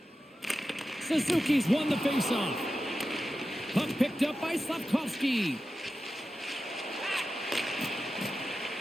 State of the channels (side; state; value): both; normal; correlation 0.92